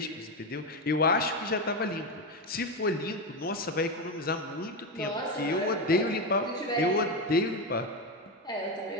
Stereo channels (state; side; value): normal; both; correlation 0.12